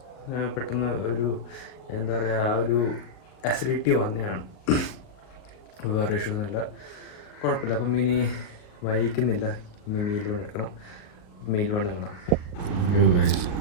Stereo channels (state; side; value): late; right; 39 ms